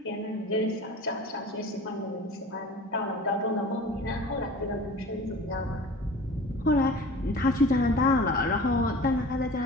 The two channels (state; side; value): normal; both; correlation 0.41